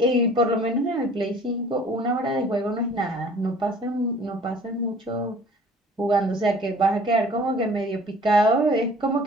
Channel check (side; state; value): both; normal; correlation 0.50